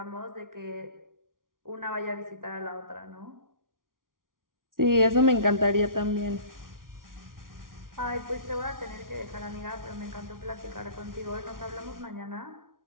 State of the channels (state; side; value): late; left; 0.90 ms